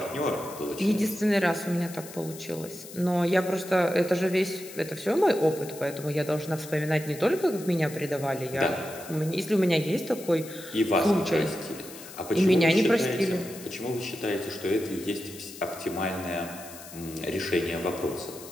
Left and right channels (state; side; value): noise; left; hiss, 15 dB below the sound